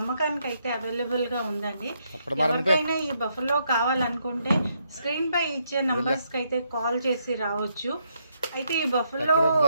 అయితే అవైలబుల్గా ఉందండి. ఎవరికైనా ఈ బఫెలో కావాలనుకుంటే స్క్రీన్ పై ఇచ్చే నంబర్స్కి అయితే కాల్ చేసి రావచ్చు. అయితే ఈ బఫెలో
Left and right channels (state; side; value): inverted; both; correlation -0.76